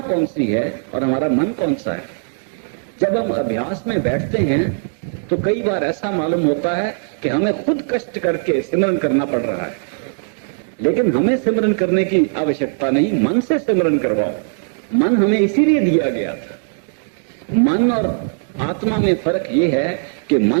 कौन सी है और हमारा मन कौन सा है। जब हम अभ्यास में बैठते हैं तो कई बार ऐसा मालूम होता है कि हमें खुद कष्ट करके सिमरन करना पड़ रहा है, लेकिन हमें सिमरन करने की आवश्यकता नहीं, मन से सिमरन करवाओ। मन हमें इसीलिए दिया गया था। मन और आत्मा में फर्क ये है कि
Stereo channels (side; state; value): left; silent; digital silence